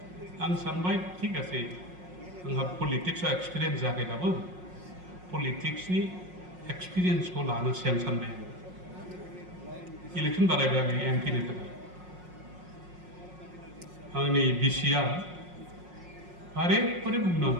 आं सानबाय ठीक आसे आंहा पलिटिक्सआव एक्सपिरियेन्स जायाखै दाबो पलिटिक्सनि एक्सपिरियेन्सखौ लानोसै आं सानबाय इलेक्सन बानायबाय आङो MP नि थाखाय आंनि बिसिया बारे बारे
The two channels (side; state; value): left; late; 5.5 ms